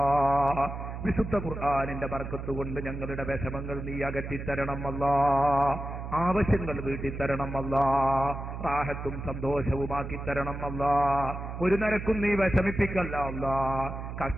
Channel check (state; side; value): noise; right; hum, 7 dB below the sound